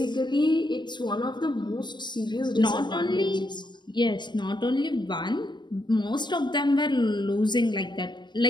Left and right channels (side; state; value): right; late; 0.22 ms